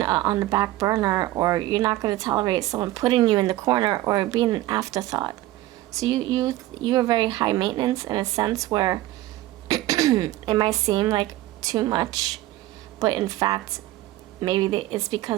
on the back burner, or you're not going to tolerate someone putting you in the corner or being an afterthought. So you are very high maintenance in a sense where it might seem like too much, but in fact maybe it's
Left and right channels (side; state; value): left; quieter; 16.2 dB